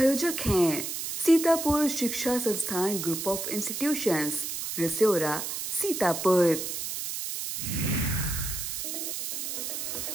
हैं सीतापुर शिक्षा संस्थान ग्रुप ऑफ इंस्टीट्यूशंस, रिसोरा, सीतापुर।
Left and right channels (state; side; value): noise; right; hiss, 4 dB below the sound